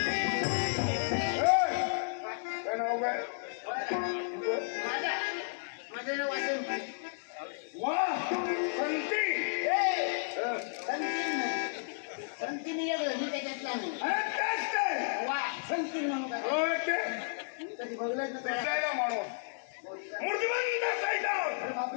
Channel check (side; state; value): right; silent; digital silence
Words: माझं नाव वासंती. संतीने मी त्याच्यातला नाही. वा संती म्हणून कधी बघलंच माणूस